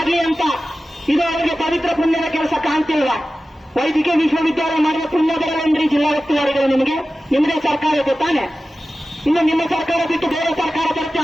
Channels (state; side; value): normal; both; correlation 0.95